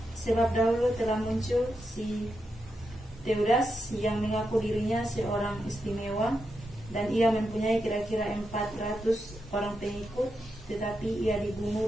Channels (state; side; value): normal; both; correlation 0.86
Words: Sebab dahulu telah muncul si Teudas yang mengaku dirinya seorang istimewa, dan ia mempunyai kira-kira 400 orang pengikut, tetapi ia dibunuh